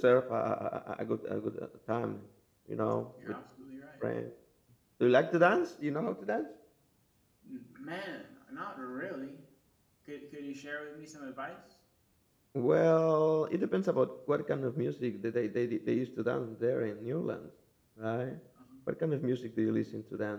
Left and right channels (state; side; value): identical; both; correlation 1.00